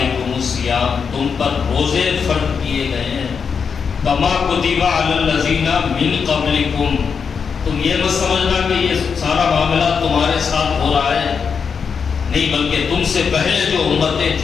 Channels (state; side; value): quieter; right; 6.1 dB